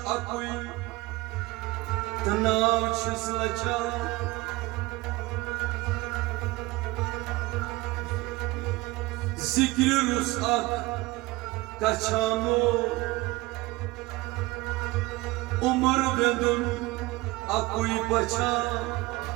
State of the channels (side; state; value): left; quieter; 21.0 dB